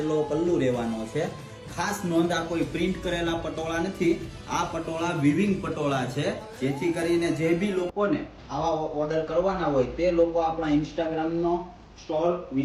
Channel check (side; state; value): both; identical; correlation 1.00